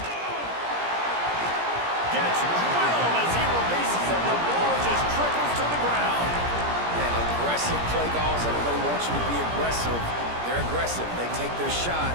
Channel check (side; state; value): left; late; 17 ms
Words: Gets drilled as he releases it. The ball just trickles to the ground. Man, aggressive play calls. Everybody wants you to be aggressive. They're aggressive. They take their shot.